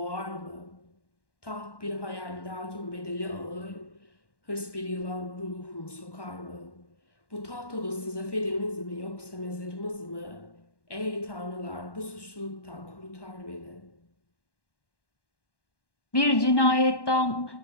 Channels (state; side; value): late; right; 1.1 ms